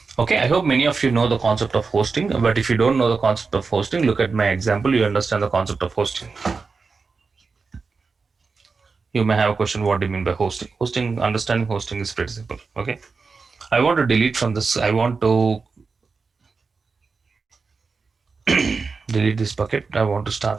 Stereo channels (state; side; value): quieter; left; 4.6 dB